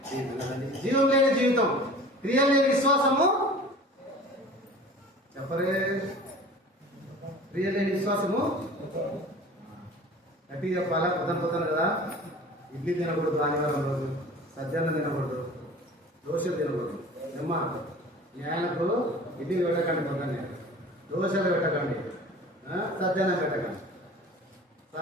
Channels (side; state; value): both; normal; correlation 0.42